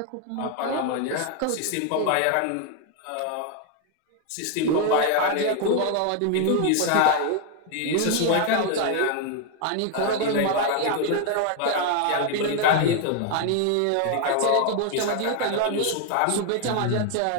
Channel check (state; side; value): different; both; correlation 0.00